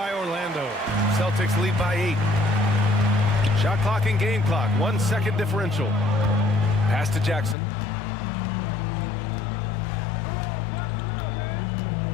Orlando. Celtics lead by 8. Shot clock and game clock. 1 second differential. Pass to Jackson.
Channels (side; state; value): right; drops out; at 7.6 s